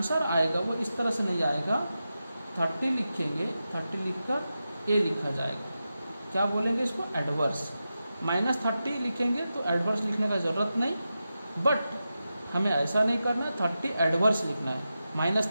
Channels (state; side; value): inverted; both; correlation -0.91